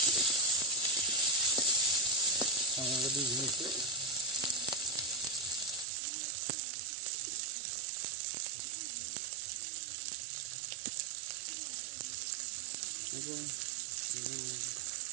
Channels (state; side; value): drops out; left; at 5.9 s